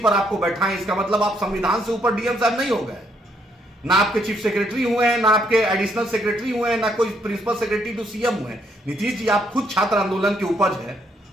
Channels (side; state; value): both; normal; correlation 0.71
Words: आपको बैठाएं, इसका मतलब आप संविधान से ऊपर डीएम साहब नहीं हो गए। ना आपके चीफ सेक्रेटरी हुए हैं, ना आपके एडिशनल सेक्रेटरी हुए हैं, ना कोई प्रिंसिपल सेक्रेटरी टू सीएम हुए हैं। नीतीश जी, आप खुद छात्र आंदोलन की उपज है